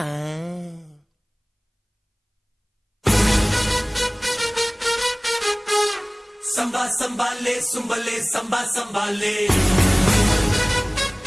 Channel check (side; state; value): both; identical; correlation 1.00